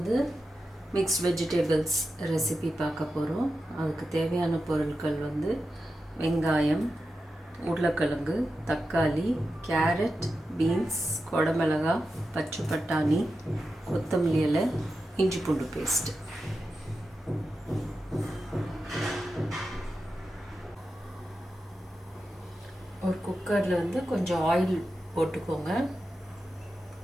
mixed vegetables recipe பார்க்க போகிறோம். அதுக்கு தேவையான பொருட்கள் வெங்காயம், உருளைக்கிழங்கு, தக்காளி, கேரட், பீன்ஸ், குடமிளகாய், பச்சை பட்டாணி, கொத்தமல்லி இலை, இஞ்சி பூண்டு பேஸ்ட்டு. ஒரு குக்கரில் கொஞ்சம் ஆயில் போட்டுக்கோங்க.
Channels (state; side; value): normal; both; correlation 0.90